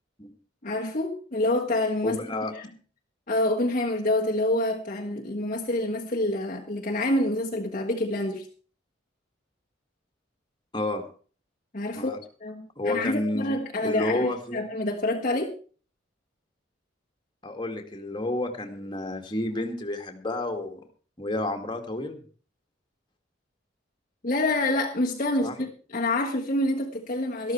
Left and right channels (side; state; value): both; normal; correlation 0.31